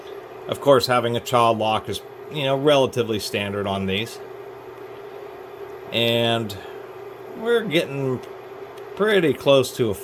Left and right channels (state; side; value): identical; both; correlation 1.00